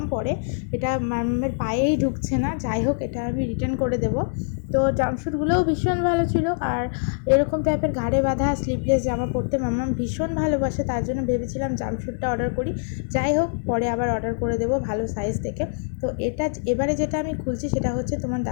পরে, এটা মামামের পায়েই ঢুকছে না। যাই হোক, এটা আমি রিটার্ন করে দেবো। তো জাম্পস্যুটগুলোও ভীষণ ভালো ছিল, আর এরকম টাইপের ঘাড়ে বাঁধা স্লিভলেস জামা পরতে মামাম ভীষণ ভালোবাসে, তার জন্য ভেবেছিলাম জাম্পস্যুটটা অর্ডার করি। যাই হোক, পরে আবার অর্ডার করে দেবো ভালো সাইজ থেকে। তো এবারে যেটা আমি খুলছি সেটা হচ্ছে তোমার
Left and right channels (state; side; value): silent; right; digital silence